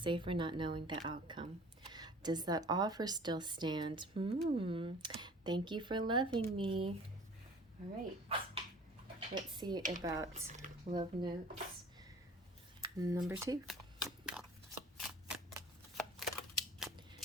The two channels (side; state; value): both; normal; correlation 0.47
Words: not knowing the outcome. Does that offer still stand? Thank you for loving me. All right. Let's see about Love Notes number 2.